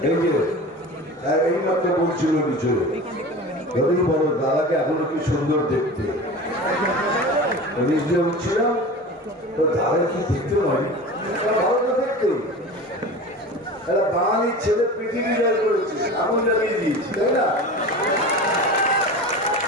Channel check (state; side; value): normal; both; correlation 0.34